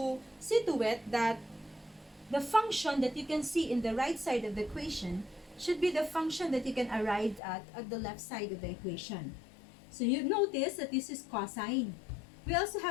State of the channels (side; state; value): right; drops out; at 7.4 s